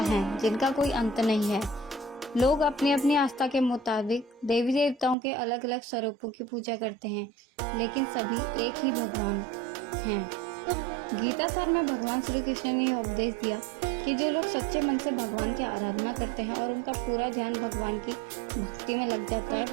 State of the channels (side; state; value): left; drops out; at 5.2 s